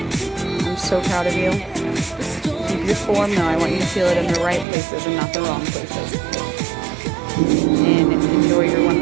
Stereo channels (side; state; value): left; drops out; at 4.7 s